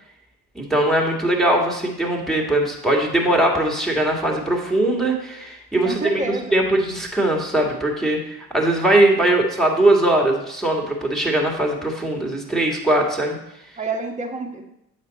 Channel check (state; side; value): normal; both; correlation 0.59